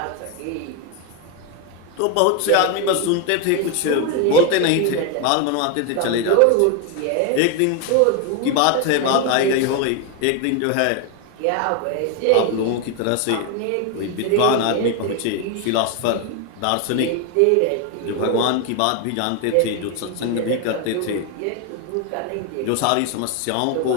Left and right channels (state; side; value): different; both; correlation 0.01